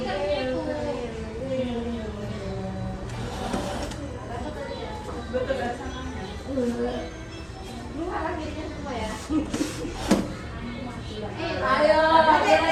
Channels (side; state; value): both; identical; correlation 1.00